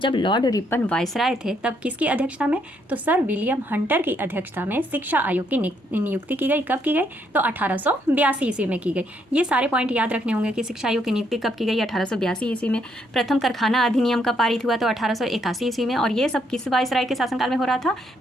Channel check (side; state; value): both; normal; correlation 0.73